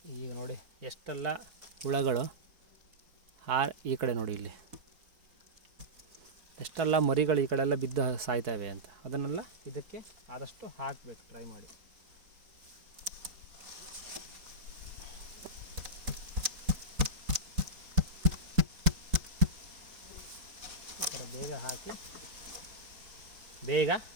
ಈಗ ನೋಡಿ ಎಷ್ಟೆಲ್ಲ ಹುಳಗಳು ಈ ಕಡೆ ನೋಡಿ, ಇಲ್ಲಿ ಎಷ್ಟೆಲ್ಲ ಮರಿಗಳು ಈ ಕಡೆ ಎಲ್ಲ ಬಿದ್ದು ಸಾಯ್ತವೆ ಅಂತ. ಅದನ್ನೆಲ್ಲ ಇದಕ್ಕೆ ಆದಷ್ಟು ಹಾಕಬೇಕು, ಟ್ರೈ ಮಾಡಿ. ಬೇಗ ಹಾಕಿ ಬೇಗ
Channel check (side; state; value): left; late; 4.2 ms